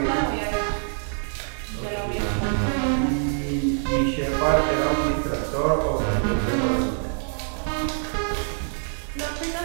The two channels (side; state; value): left; silent; digital silence